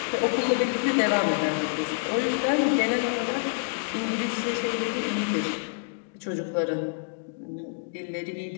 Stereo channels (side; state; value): right; silent; digital silence